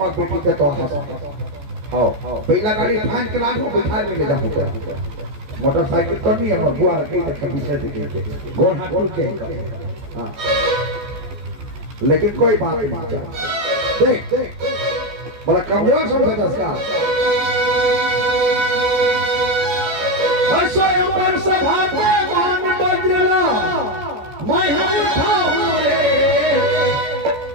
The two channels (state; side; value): late; left; 14 ms